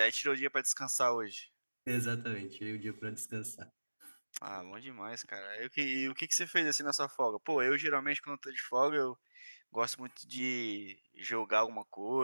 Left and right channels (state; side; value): inverted; both; correlation -1.00